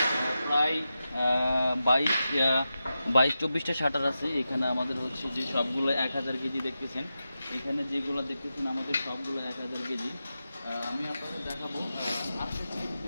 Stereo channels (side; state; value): both; inverted; correlation -0.91